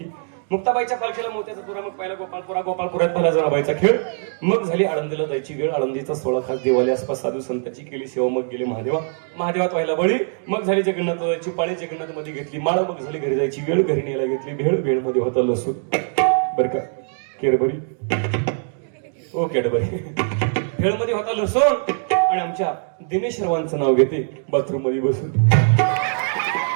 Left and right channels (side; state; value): left; silent; 64 dB below the other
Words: मुक्ताबाईच्या पालखीला मोत्याचा तुरा मग पहिला गोपाळपुरात पहिला जनाबाईचा खेळ मग झाली आळंदीला जायची वेळ आळंदीचा 16 खास देवाली आसपास साधू संतांची केली सेवा मग गेले महादेवात व्हायला बळी मग झाली जगन्नाथ जायची पाळी जगन्नाथ मध्ये घेतली माळ मग झाली घरी जायची वेळ घरी न्यायला घेतली भेळ मध्ये होता लसूण बर का केरबरी ओ कॅडबरी भेळ मध्ये होता लसूण आणि आमच्या दिनेश रावांचं नाव घेते बाथरूम मध्ये बसून